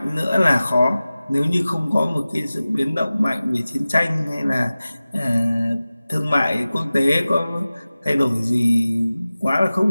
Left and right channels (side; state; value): both; inverted; correlation -0.97